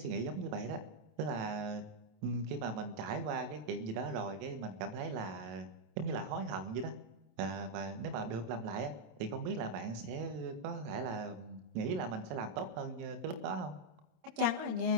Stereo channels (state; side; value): late; left; 27 ms